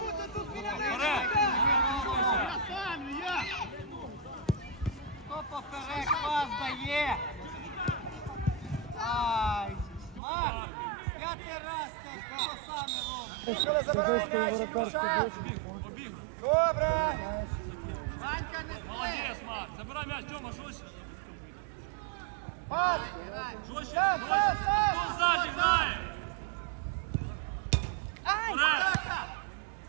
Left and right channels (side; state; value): left; drops out; at 10.2 s